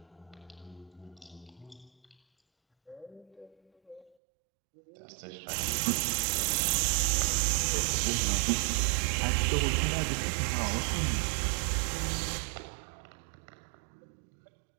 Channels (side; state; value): left; drops out; at 4.2 s